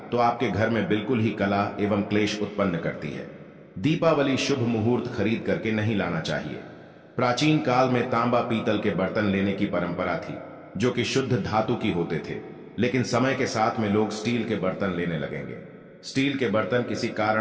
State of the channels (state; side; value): identical; both; correlation 1.00